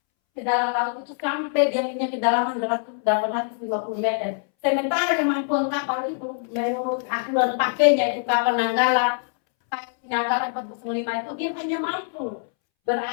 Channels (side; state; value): right; silent; 63 dB below the other